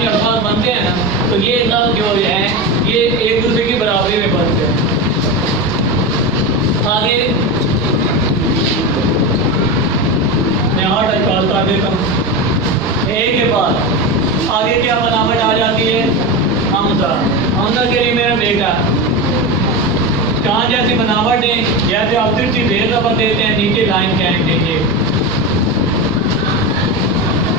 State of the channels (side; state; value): both; normal; correlation 0.19